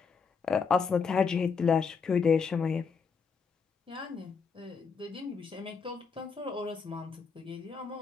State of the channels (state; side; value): quieter; right; 5.5 dB